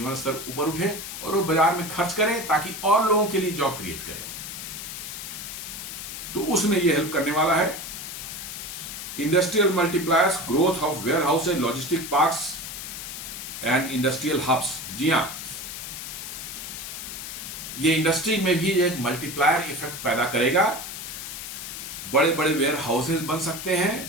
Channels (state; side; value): noise; left; hiss, 8 dB below the sound